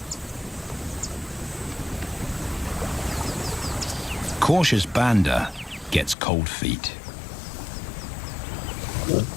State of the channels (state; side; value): drops out; right; at 6.2 s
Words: Cautious Banda gets cold feet.